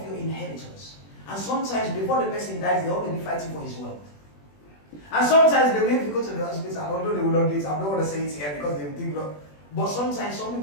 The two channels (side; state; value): right; late; 20 ms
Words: your inheritors. And sometimes before the person dies, they're already fighting for his wealth. And sometimes they will even go to the hospital, although they will not do it. I don't want to say it here because they think, but sometimes some